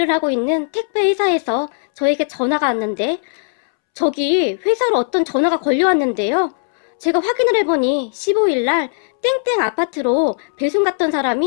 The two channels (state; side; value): silent; right; 67 dB below the other